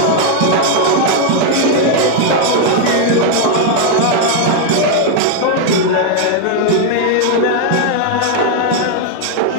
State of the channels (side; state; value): both; different; correlation 0.00